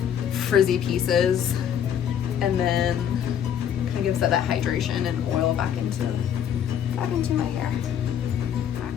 frizzy pieces and then kind of gives that hydration and oil back into my hair. I'm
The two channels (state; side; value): quieter; right; 9.1 dB